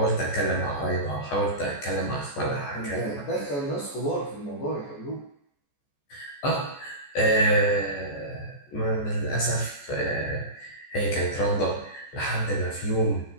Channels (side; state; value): right; late; 14 ms